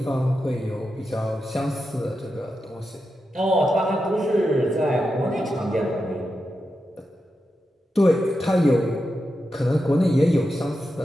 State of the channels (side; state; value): both; normal; correlation 0.88